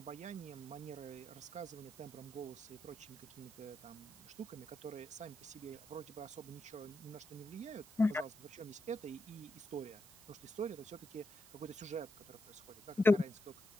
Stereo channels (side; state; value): right; noise; hiss, 19 dB below the sound